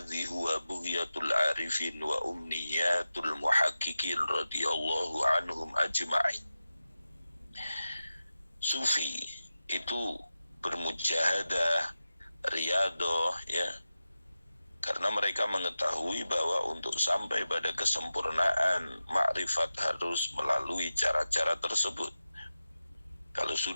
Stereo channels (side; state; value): both; inverted; correlation -0.93